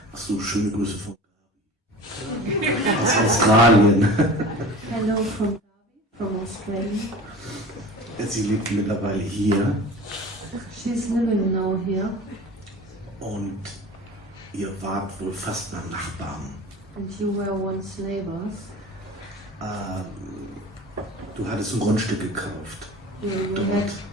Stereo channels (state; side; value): normal; both; correlation 0.38